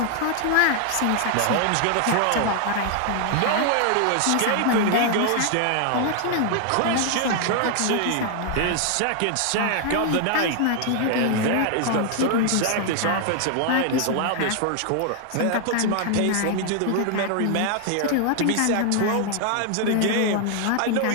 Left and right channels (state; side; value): different; both; correlation 0.00